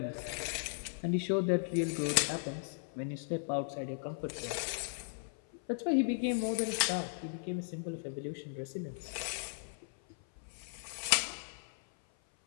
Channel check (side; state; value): right; silent; 53 dB below the other